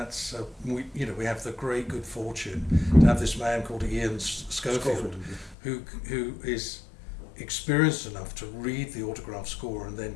we have the great good fortune to have this man called Ian Schofield, who is experienced enough to read the autograph score and then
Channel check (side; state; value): right; drops out; at 5.6 s